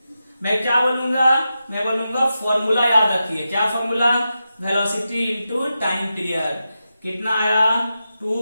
मैं क्या बोलूंगा? मैं बोलूंगा फॉर्मूला याद रखिए। क्या formula? Velocity into time period. कितना आया?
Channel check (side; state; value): both; inverted; correlation -0.90